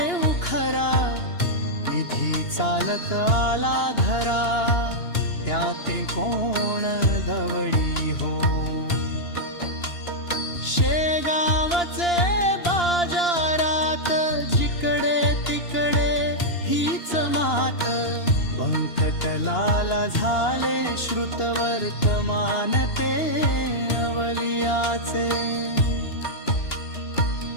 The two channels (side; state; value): right; late; 2.9 ms